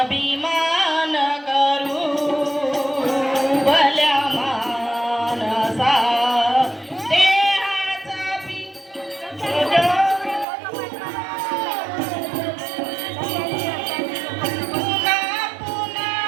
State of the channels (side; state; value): left; drops out; at 10.5 s